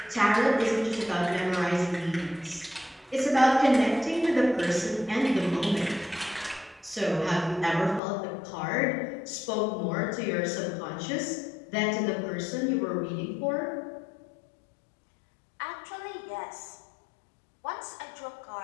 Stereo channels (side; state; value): right; drops out; at 8.0 s